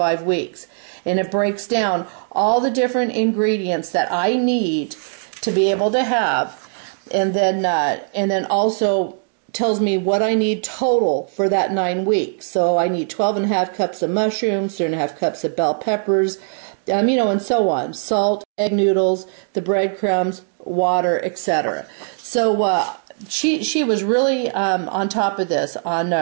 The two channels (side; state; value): left; silent; digital silence